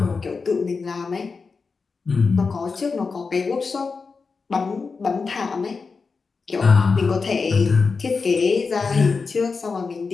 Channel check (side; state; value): right; quieter; 4.7 dB